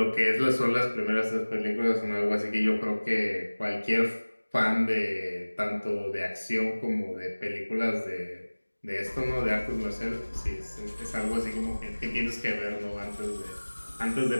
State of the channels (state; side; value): inverted; both; correlation -1.00